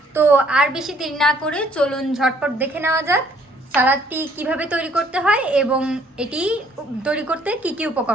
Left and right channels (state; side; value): normal; both; correlation 0.62